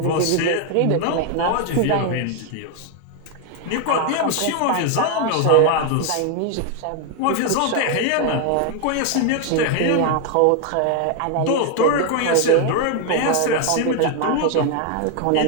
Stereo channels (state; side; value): different; both; correlation 0.01